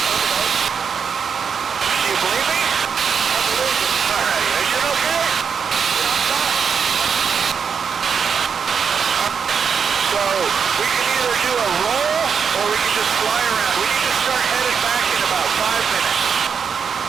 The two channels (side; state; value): left; quieter; 6.5 dB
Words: Do you believe me? I believe you. All right, are you okay? Yeah, I'm fine. All right. So we can either do a roll or we can just fly around. We need to start headed back in about 5 minutes.